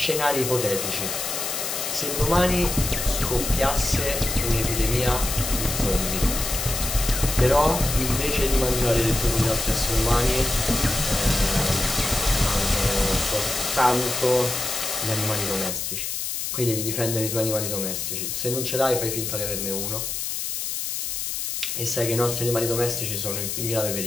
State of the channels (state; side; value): noise; left; hiss, 3 dB below the sound